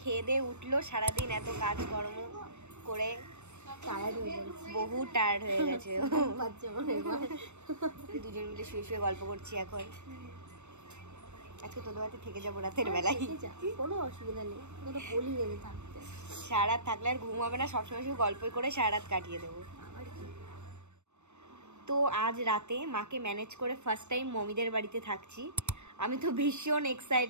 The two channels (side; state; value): left; late; 0.82 ms